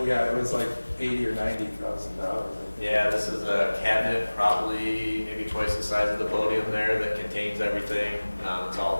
yeah, it was like $80,000 or $90,000. Yeah, this is a cabinet, probably maybe twice the size of the podium there, that contains everything. It's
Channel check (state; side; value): inverted; both; correlation -1.00